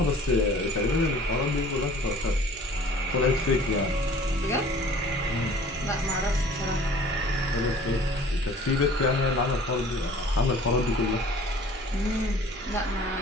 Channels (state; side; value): normal; both; correlation 0.49